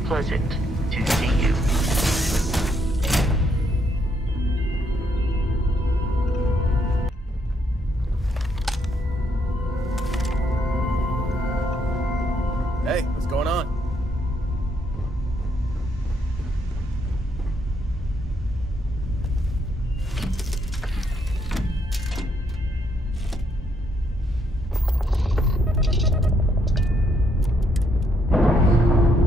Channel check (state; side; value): normal; both; correlation 0.73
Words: pleasant to see you. Hey, what's going on?